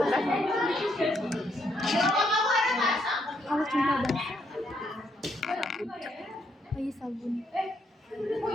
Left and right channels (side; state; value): both; normal; correlation 0.74